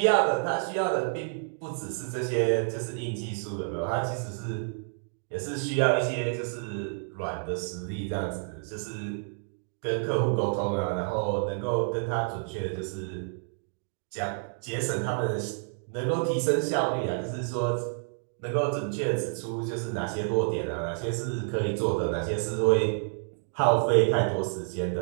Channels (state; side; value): silent; left; 58 dB below the other